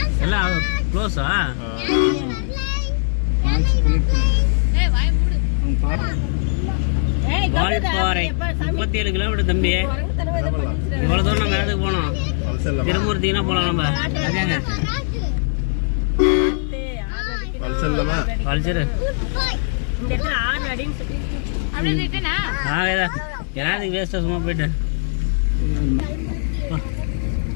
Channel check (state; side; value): silent; right; 65 dB below the other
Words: எல்லாம் க்ளோஸா? வால்பாறை 37 கிலோமீட்டர் தம்பி. இவ்வளவு தூரம் நம்ம இடத்துக்கு போனோம். திருமூர்த்தினா போலாம் நம்ம. வேஸ்டா சும்மா போயிட்டு